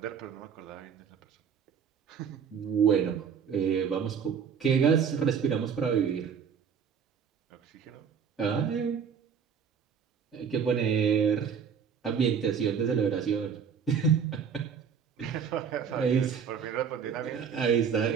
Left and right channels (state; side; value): quieter; left; 7.0 dB